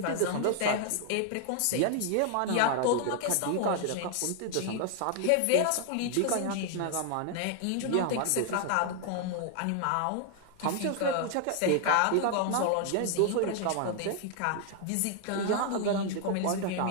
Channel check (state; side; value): different; both; correlation 0.00